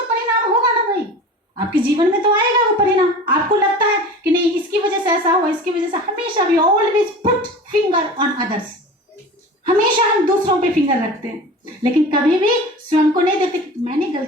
परिणाम होगा ना भाई, आपके जीवन में तो आएगा वो परिणाम। आपको लगता है कि नहीं इसकी वजह से ऐसा हुआ, इसकी वजह से, हमेशा भी always put finger on others, हमेशा हम दूसरों पे फिंगर रखते हैं, लेकिन कभी भी स्वयं को नहीं देखते कि मैंने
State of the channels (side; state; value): both; normal; correlation 0.36